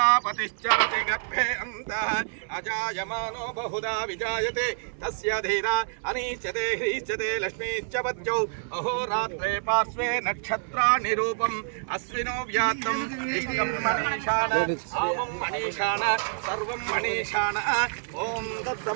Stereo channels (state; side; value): silent; left; 60 dB below the other